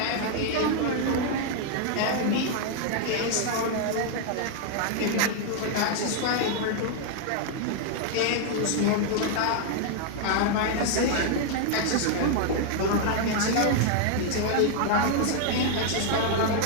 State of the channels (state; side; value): different; both; correlation 0.00